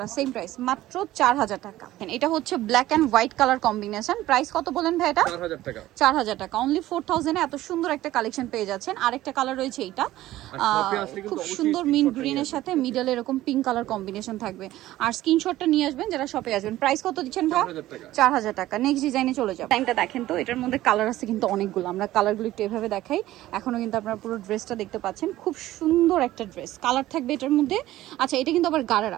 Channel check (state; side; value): quieter; left; 15.3 dB